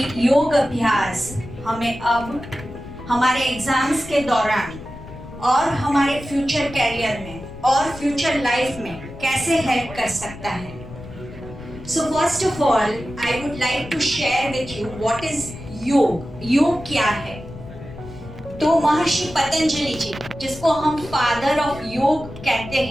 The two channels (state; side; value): noise; left; rumble, 15 dB below the sound